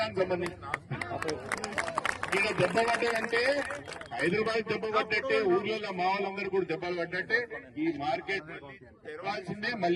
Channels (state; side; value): identical; both; correlation 1.00